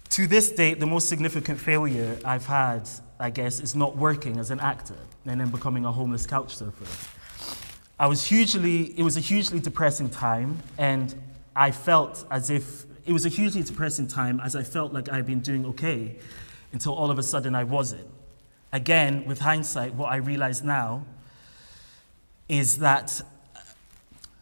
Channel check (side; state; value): both; inverted; correlation -1.00